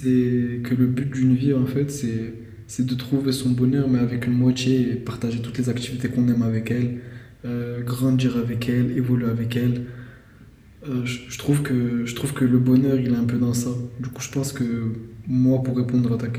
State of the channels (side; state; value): both; identical; correlation 1.00